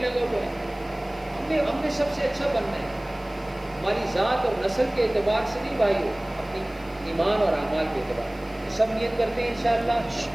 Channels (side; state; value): left; noise; hiss, 27 dB below the sound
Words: ہوا ہے۔ ہم نے سب سے اچھا بننا ہے، ہماری ذات اور نسل کے اعتبار سے نہیں بھائیو، اپنی ایمان اور اعمال کے اعتبار سے۔ سب نیت کرتے ہیں انشاءاللہ۔